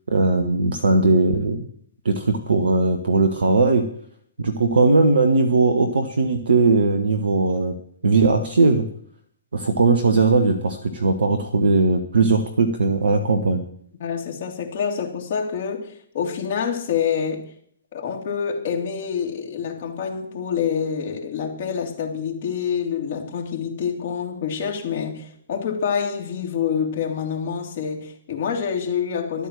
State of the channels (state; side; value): inverted; both; correlation -0.61